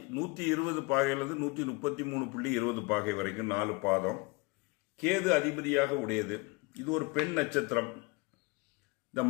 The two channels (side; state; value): right; quieter; 26.3 dB